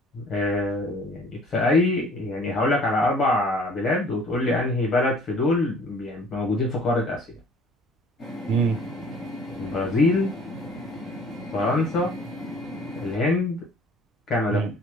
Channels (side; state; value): both; normal; correlation 0.53